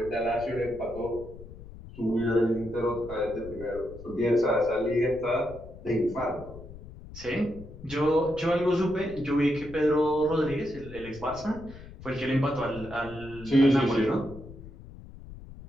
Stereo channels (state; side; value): noise; left; rumble, 16 dB below the sound